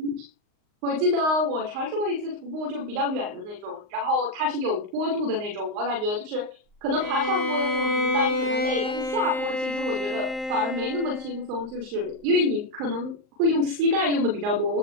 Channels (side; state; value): left; late; 38 ms